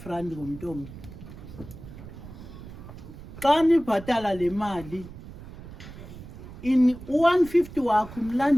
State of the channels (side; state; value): right; noise; rumble, 14 dB below the sound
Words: rand ngomntu omnye. Xa nibhatala le mali u-150 wakho